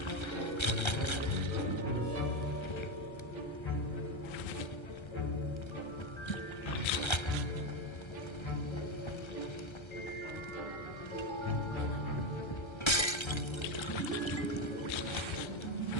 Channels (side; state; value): right; late; 1.3 ms